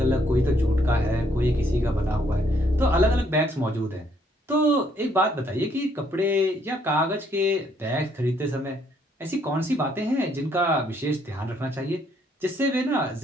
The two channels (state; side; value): normal; both; correlation 0.69